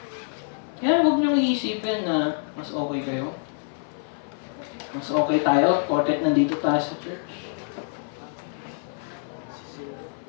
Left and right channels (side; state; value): right; silent; 56 dB below the other